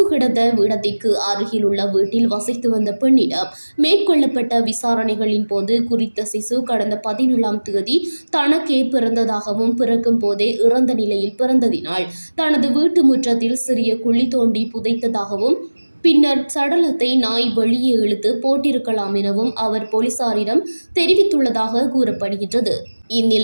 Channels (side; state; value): both; inverted; correlation -1.00